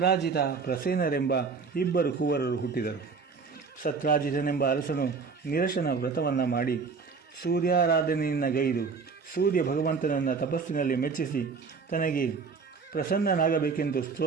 ಪ್ರಸೇನರೆಂಬ 2 ಕುವರರು ಹುಟ್ಟಿದರು. ಸತ್ರಾಜಿತನೆಂಬ ಅರಸನು ನಿರಶನ ವ್ರತವನ್ನು ಮಾಡಿ ಸೂರ್ಯಾರಾಧನೆಯನ್ನು ಗೈದು ಸೂರ್ಯ ಭಗವಂತನನ್ನು ತಪಸ್ಸಿನಲ್ಲಿ ಮೆಚ್ಚಿಸಿ ತನಗೆ ಪ್ರಸನ್ನನಾಗಬೇಕೆಂದು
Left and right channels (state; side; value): quieter; left; 5.1 dB